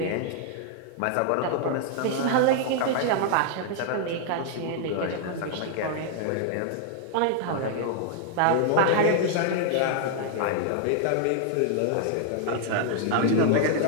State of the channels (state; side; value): different; both; correlation 0.00